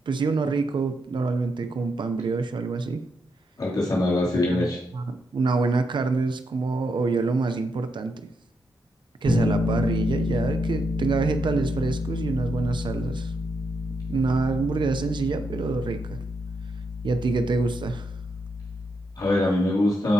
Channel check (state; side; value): normal; both; correlation 0.81